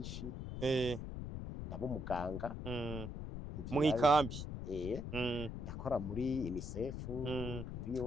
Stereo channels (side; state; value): left; noise; rumble, 6 dB below the sound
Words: Ndaba umuganga. Mu ikambi. Ndakora muri UNICEF, muri